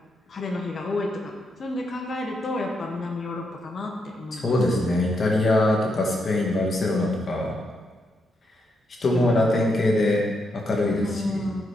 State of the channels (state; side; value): normal; both; correlation 0.81